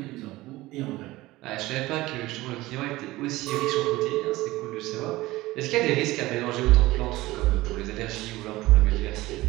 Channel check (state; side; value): quieter; left; 18.6 dB